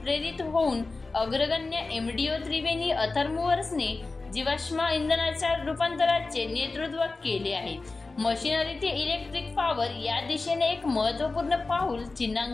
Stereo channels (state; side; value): quieter; right; 3.6 dB